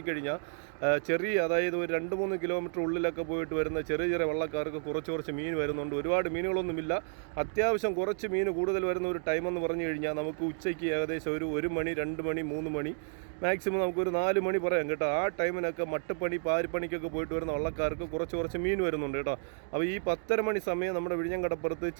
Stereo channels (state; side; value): silent; left; digital silence